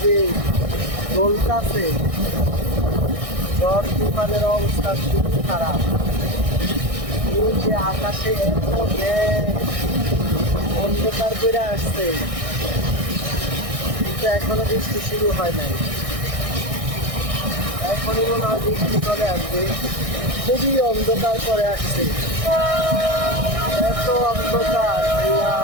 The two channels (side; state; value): left; late; 1.6 ms